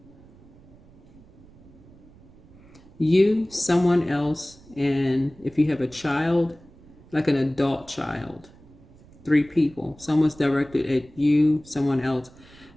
You, someone else, and if you have a child, like an adult child, 3 people. Someone's directed at you, someone else.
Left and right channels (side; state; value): right; noise; rumble, 24 dB below the sound